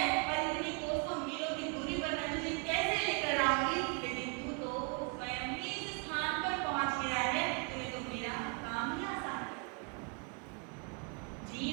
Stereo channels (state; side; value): quieter; left; 33.6 dB